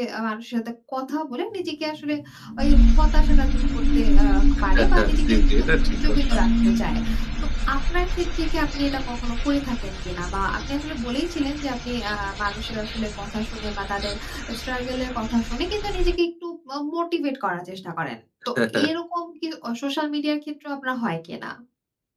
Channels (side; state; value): both; identical; correlation 1.00